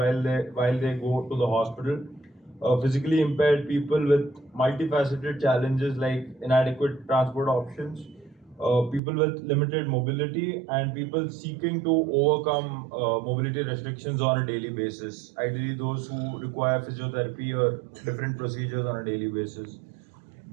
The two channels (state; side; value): drops out; left; at 9.0 s